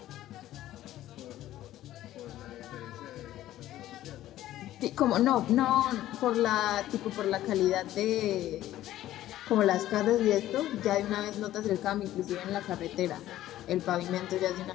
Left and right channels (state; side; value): quieter; right; 13.9 dB